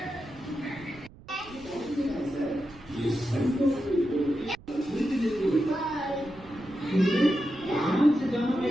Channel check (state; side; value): noise; right; rumble, 21 dB below the sound